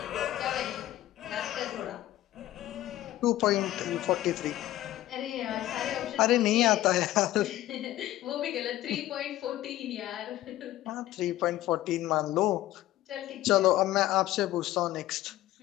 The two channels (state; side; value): quieter; right; 14.7 dB